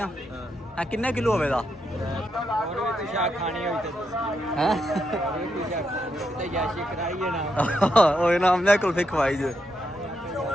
किन्ने किलो होवे दा? हैं ओए ना हमने कुल्फी खवाई जे।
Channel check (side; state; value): both; normal; correlation 0.81